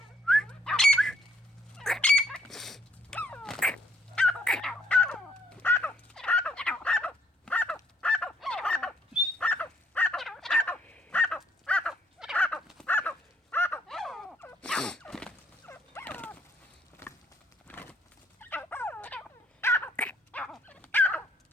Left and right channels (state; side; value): normal; both; correlation 0.69